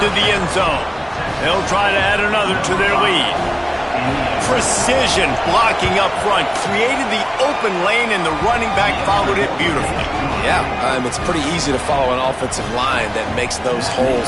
the end zone. They'll try to add another to their lead. Precision blocking up front. Created the open lane, and the running back followed it beautifully. Yeah, it's pretty easy to follow an offensive line that makes those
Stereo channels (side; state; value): both; identical; correlation 1.00